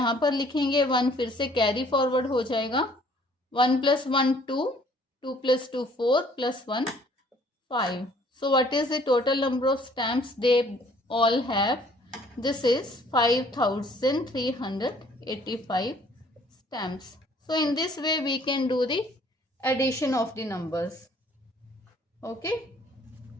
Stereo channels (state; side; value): normal; both; correlation 0.58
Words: पर लिखेंगे, 1 फिर से कैरी फॉरवर्ड हो जाएगा. 1 plus 1 2, 2 plus 2 4 plus 1 5. So what is the total number of stamps they all have? This is 5385 stamps. So in this way we can do the addition of the numbers. Okay,